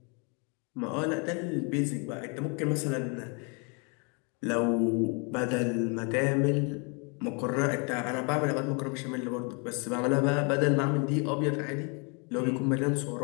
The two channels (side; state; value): right; quieter; 34.6 dB